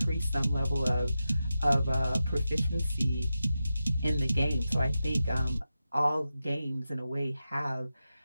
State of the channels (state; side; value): inverted; both; correlation -0.92